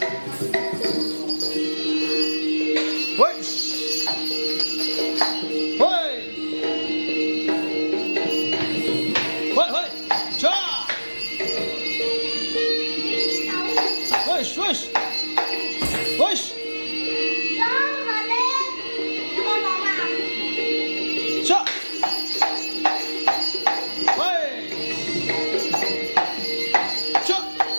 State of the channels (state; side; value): inverted; both; correlation -1.00